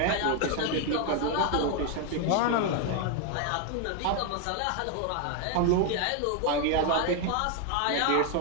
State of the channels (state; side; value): different; both; correlation 0.01